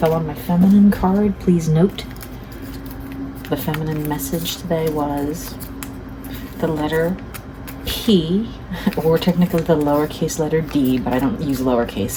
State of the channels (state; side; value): identical; both; correlation 1.00